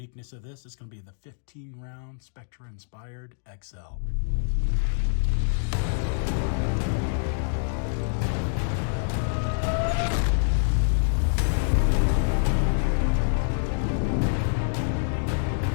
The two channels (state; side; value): silent; right; digital silence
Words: of this. It's going to be the 15 round Spectre inspired XL.